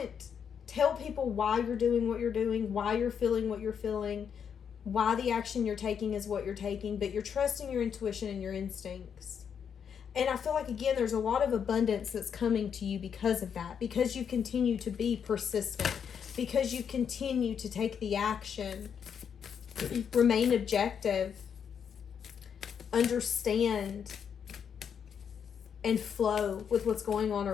tell people why you're doing what you're doing, why you're feeling what you're feeling, why the action you're taking is what you're taking, but you're trusting your intuition and your instincts. And I feel like, again, there's a lot of abundance that's coming to you because of that, because you continue to be persistent, because you continue to take the action, remain objective, understand and flow with what's going on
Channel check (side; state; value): right; quieter; 7.5 dB